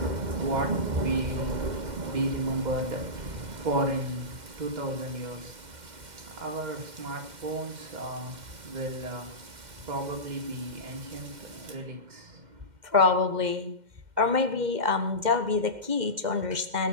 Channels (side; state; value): left; late; 2.1 ms